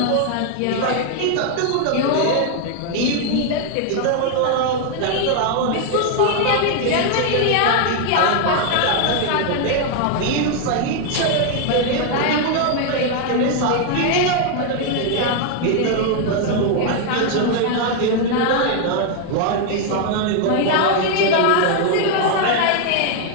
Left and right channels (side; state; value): both; different; correlation 0.00